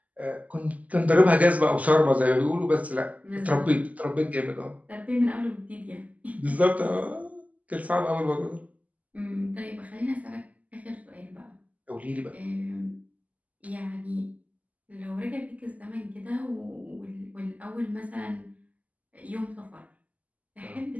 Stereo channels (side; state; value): left; late; 0.073 ms